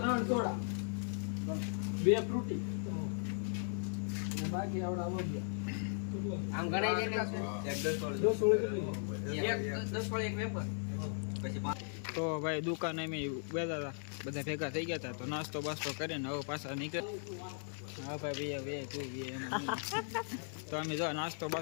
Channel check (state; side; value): silent; right; digital silence